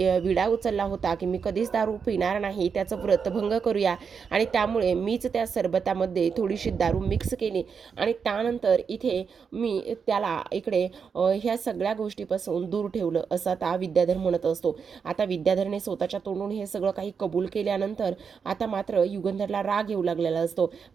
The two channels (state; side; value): quieter; left; 6.2 dB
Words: विडा उचलला होता की मी कधीच दारू पिणार नाही त्याचं व्रतभंग करूया, आणि त्यामुळे मीच त्या सरबतामध्ये थोडीशी दारू मिक्स केली आणि त्यानंतर इथे मी त्याला इकडे ह्या सगळ्या गोष्टीपासून दूर ठेवलं असं आता विद्याधर म्हणत असतो. आता विद्याधरने स्वतःच्या तोंडून हे सगळं काही कबूल केल्यानंतर आता मात्र युगंधरला राग येऊ लागलेला असतो.